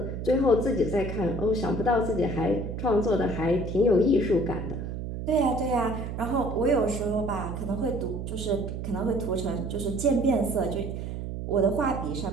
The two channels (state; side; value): noise; right; hum, 6 dB below the sound